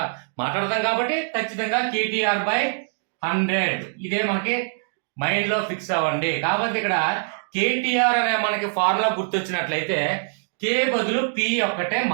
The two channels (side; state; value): left; silent; digital silence